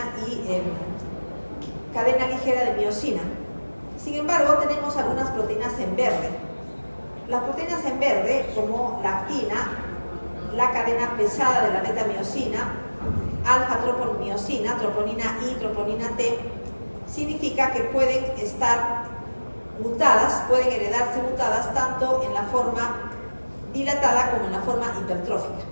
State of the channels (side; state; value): both; inverted; correlation -1.00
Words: y cadena ligera de miosina. Sin embargo, tenemos algunas proteínas en verde. Las proteínas en verde, como la actina, la cadena pesada de la beta-miosina, alfa-troponimiosina, troponina I, troponina T, significa que pueden estar mutadas, pueden heredarse mutadas tanto en la forma dilatada como en la forma hipertrófica.